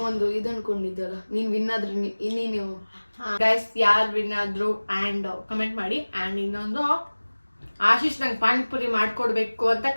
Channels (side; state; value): both; inverted; correlation -1.00